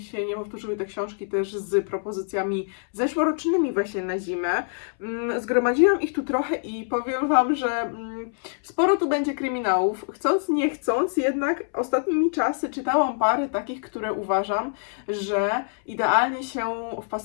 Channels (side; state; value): right; silent; 62 dB below the other